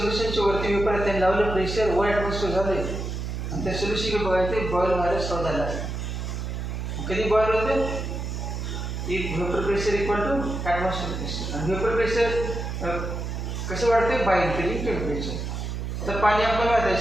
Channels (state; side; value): noise; right; hum, 4 dB below the sound